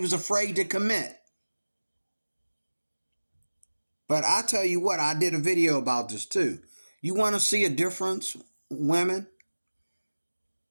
afraid to commit. But I tell you what, I did a video about this too. You want to see a difference, women,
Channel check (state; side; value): inverted; both; correlation -1.00